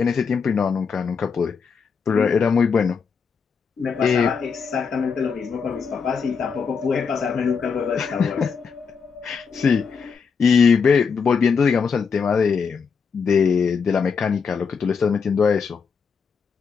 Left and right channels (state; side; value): quieter; right; 5.8 dB